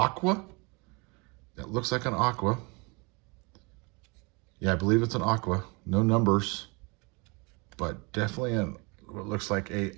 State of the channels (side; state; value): left; quieter; 29.3 dB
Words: That looks like an Aqua. Yeah, I believe it's an Aqua. No numbers, but definitely what looks like a